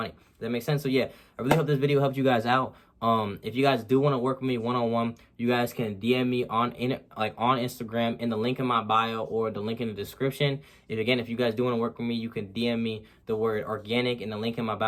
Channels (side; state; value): both; identical; correlation 1.00